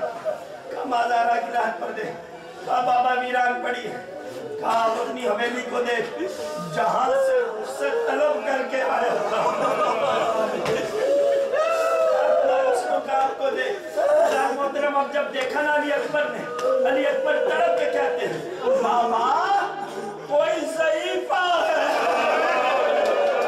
माजारा की रात पर दे। कहा बाबा वीरान पड़ी है। कहा अपनी हवेली को देख, जहां से उससे तलब करके आया आपको दे। मोहतरम अब जब देखा ना अली अकबर ने, अली अकबर तड़प के कहते हैं बाबा कोई ज़ईफ़ा है।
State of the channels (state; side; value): identical; both; correlation 1.00